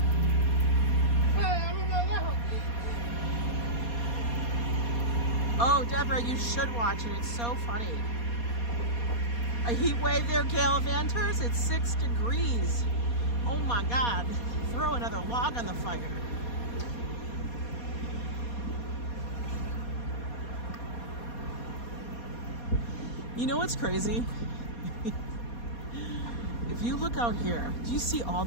Oh, Deborah, you should watch it. It's so funny. A heat wave there, Gallivanters. It's 6 degrees. Oh my God. Throw another log on the fire. You know what's crazy? If you look out here, do you see all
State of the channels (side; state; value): right; late; 4.2 ms